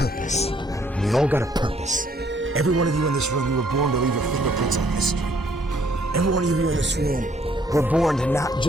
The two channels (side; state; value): both; normal; correlation 0.65